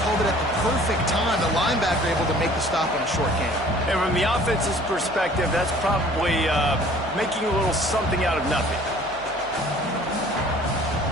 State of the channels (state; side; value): noise; left; hum, 22 dB below the sound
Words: called it at the perfect time. The linebacker able to make the stop on a short game. And from the offense's perspective, that's probably making a little something out of nothing.